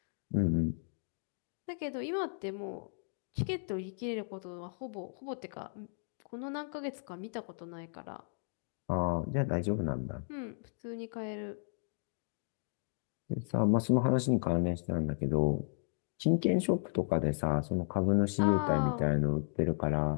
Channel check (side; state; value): right; silent; digital silence